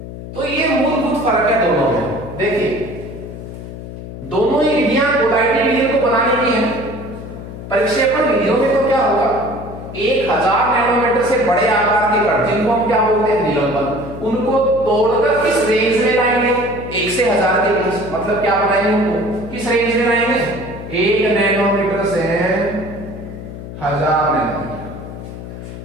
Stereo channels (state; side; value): noise; left; hum, 11 dB below the sound